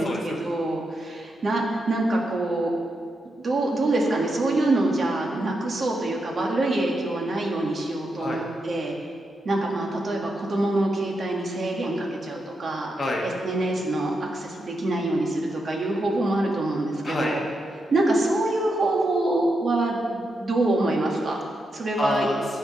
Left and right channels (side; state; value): both; normal; correlation 0.84